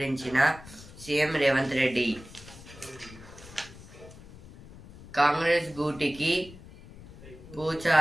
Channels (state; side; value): noise; left; rumble, 18 dB below the sound